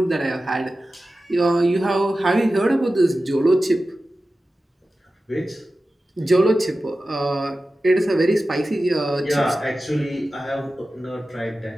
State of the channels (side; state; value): both; normal; correlation 0.94